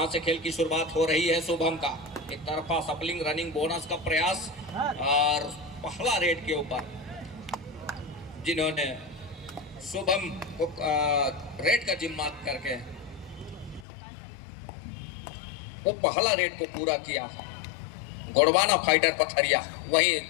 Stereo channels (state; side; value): drops out; right; at 13.9 s